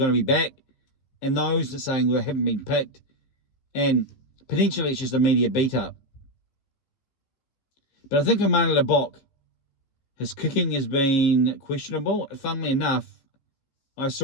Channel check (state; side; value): late; right; 15 ms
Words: to be back, and those that are saying they haven't been picked, and potentially it's just a media beat up. But I think for Mane Lebok, his kicking has been questionable. Funnily enough, I